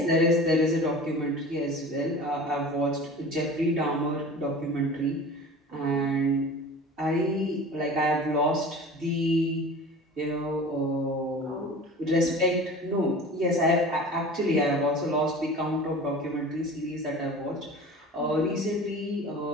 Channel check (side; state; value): both; normal; correlation 0.39